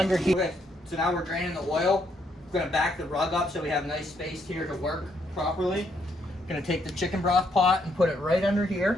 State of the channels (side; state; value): both; normal; correlation 0.74